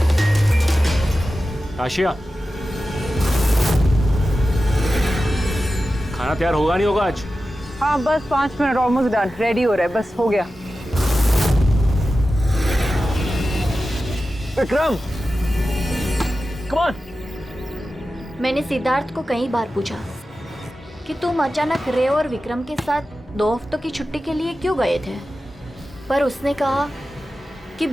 आशिया, खाना तैयार होगा नहीं होगा आज? हाँ, बस 5 मिनट, ऑलमोस्ट डन, रेडी हो रहा है, बस हो गया। Vikram, come on. मैंने सिद्धार्थ को कई बार पूछा कि तुम अचानक रे और विक्रम के साथ 2 हफ्तों की छुट्टी के लिए क्यों गए थे, पर उसने कहा कि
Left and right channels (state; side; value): normal; both; correlation 0.93